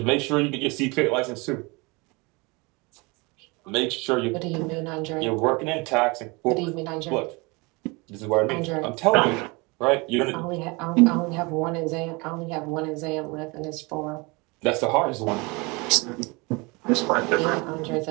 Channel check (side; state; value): left; quieter; 26.9 dB